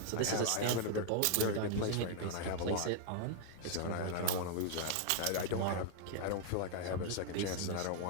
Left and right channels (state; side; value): different; both; correlation 0.00